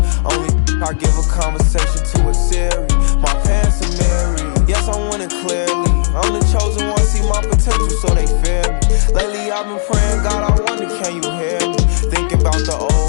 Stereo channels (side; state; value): right; silent; digital silence